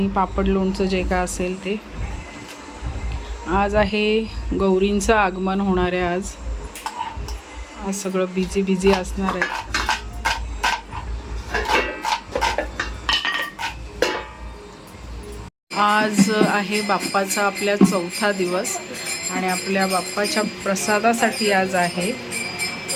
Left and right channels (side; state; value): both; identical; correlation 1.00